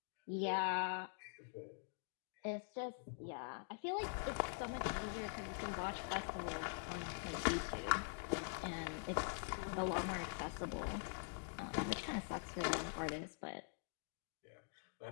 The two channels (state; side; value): silent; right; digital silence